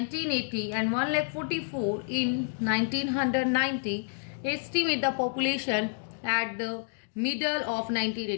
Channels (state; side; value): silent; right; digital silence